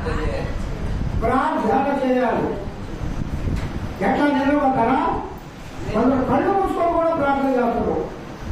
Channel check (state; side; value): identical; both; correlation 1.00